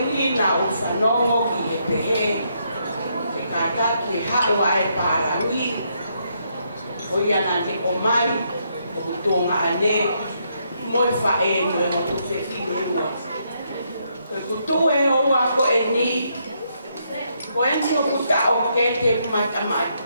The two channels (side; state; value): both; inverted; correlation -0.76